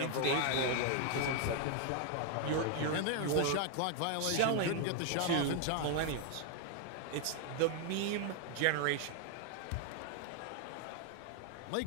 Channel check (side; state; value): both; different; correlation 0.00